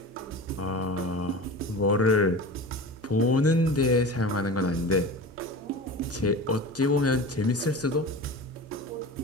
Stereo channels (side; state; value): both; normal; correlation 0.33